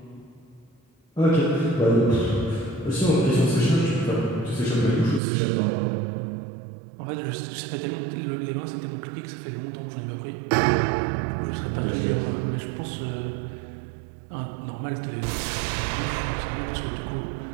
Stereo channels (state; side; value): drops out; left; at 5.2 s